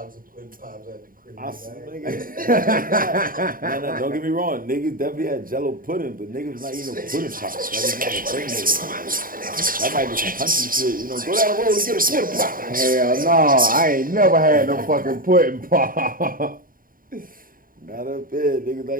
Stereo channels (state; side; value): late; left; 0.41 ms